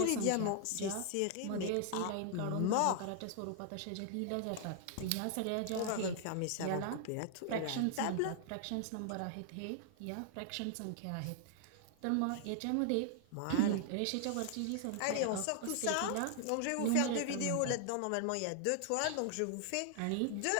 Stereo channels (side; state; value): both; different; correlation 0.00